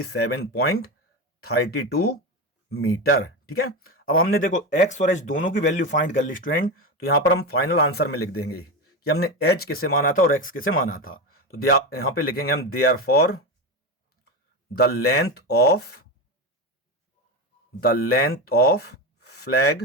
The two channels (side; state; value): both; normal; correlation 0.18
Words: 7.32 मीटर। ठीक है, अब हमने देखो X और H दोनों की वैल्यू फाइंड कर ली स्टूडेंट, तो यहां पर हम फाइनल आंसर में लिख देंगे कि हमने H किसे माना था और X किसे माना था। तो यहां पे लिखेंगे हम therefore the length of